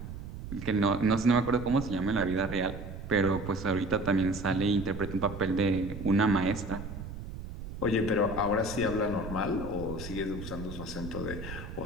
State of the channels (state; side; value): noise; right; rumble, 9 dB below the sound